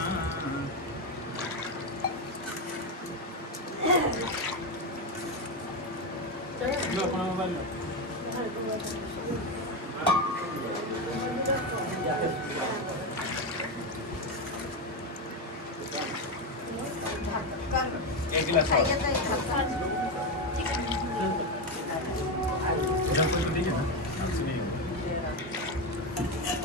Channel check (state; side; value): normal; both; correlation 0.11